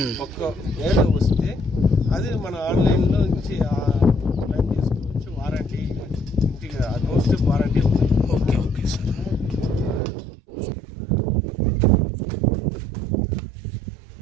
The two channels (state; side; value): drops out; left; at 10.0 s